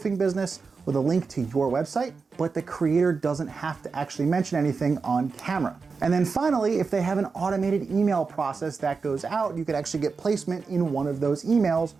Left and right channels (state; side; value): quieter; left; 4.8 dB